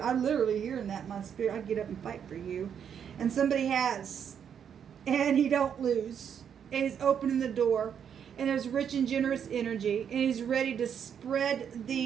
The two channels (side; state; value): left; quieter; 8.1 dB